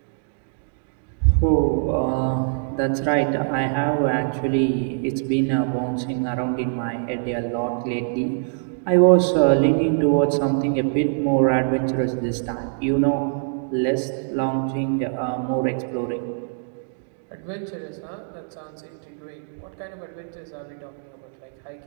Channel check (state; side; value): silent; left; digital silence